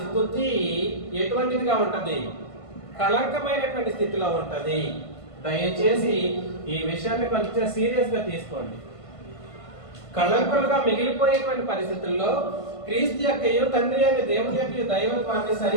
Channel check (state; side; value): late; right; 1.5 ms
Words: స్తుతి ఎటువంటిదిగా ఉంటది? కళంకమైనటువంటి స్థితిలో ఉంటది. దయచేసి ఈ విషయాన్ని కొంచెం సీరియస్ గా తీసుకోండి. కళంకులుగా మిగిలిపోయేటువంటి పరిస్థితుల్లో క్రీస్తు యొక్క తండ్రి అనే దేవుని యొక్క దైవత్వాన్ని